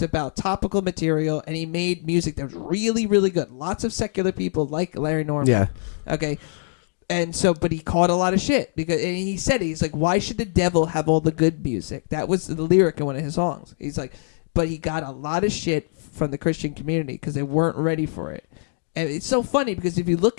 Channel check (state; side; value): silent; right; digital silence